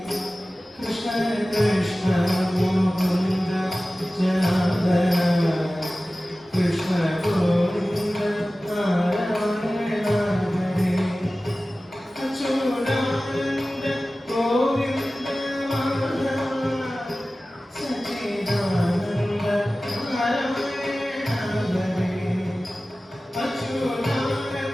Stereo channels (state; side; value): normal; both; correlation 0.96